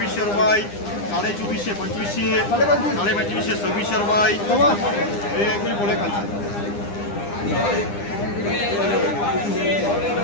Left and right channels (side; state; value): right; late; 9.9 ms